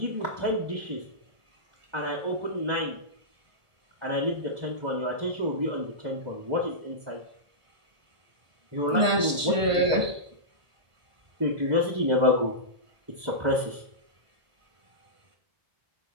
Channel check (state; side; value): late; left; 1.5 ms